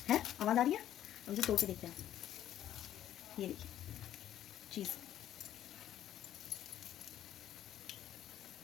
है आवाज़ आ रही है, अब इसे तोड़ के देखते हैं। ये देखिए चीज़,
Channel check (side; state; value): right; quieter; 11.7 dB